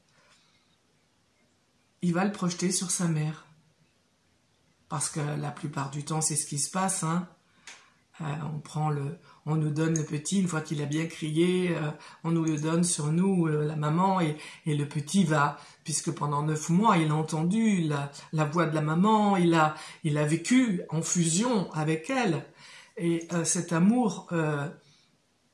il va le projeter sur sa mère. Parce que la plupart du temps c'est ce qui se passe, hein. On nous donne le petit, une fois qu'il a bien crié, on nous le donne sur nous, la maman, et le petit va, puisque pendant 9 mois, il a entendu la voix de la maman, il a vécu en fusion avec elle, et cet amour,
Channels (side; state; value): both; identical; correlation 1.00